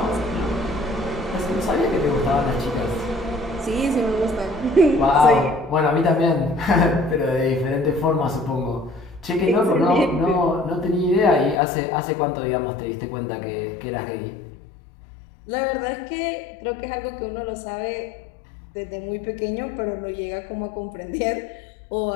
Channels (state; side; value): drops out; right; at 11.6 s